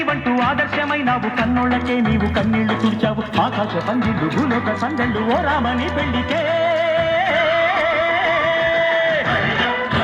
ఆదర్శమైనావు, కన్నోళ్ళకే నీవు కన్నీళ్లు తుడిచావు. ఆకాశ పందిళ్ళు భూలోక సందళ్ళు ఓ రామని పెళ్లికే.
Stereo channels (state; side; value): identical; both; correlation 1.00